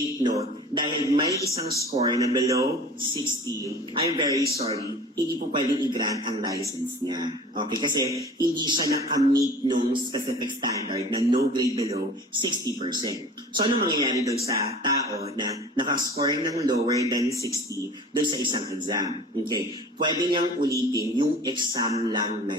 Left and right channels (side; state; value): both; normal; correlation 0.42